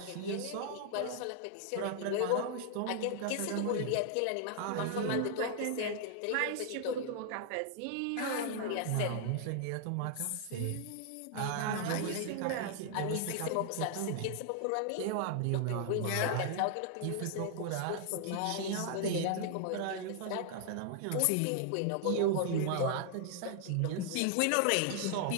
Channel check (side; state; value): both; different; correlation 0.00